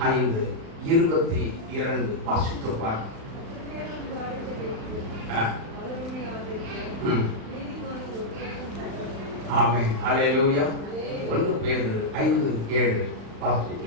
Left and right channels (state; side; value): late; left; 36 ms